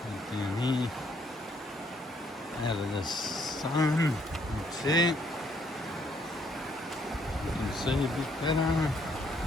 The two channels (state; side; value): normal; both; correlation 0.69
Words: Down here, out of the sun, that's it. You can see a bit better.